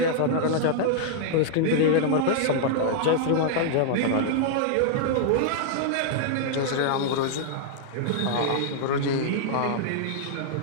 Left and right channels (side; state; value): both; different; correlation -0.01